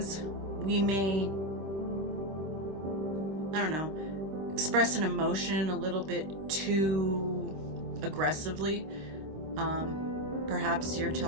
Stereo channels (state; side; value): late; left; 25 ms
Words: we may, express an emotion a little bit too aggressively. Perhaps you're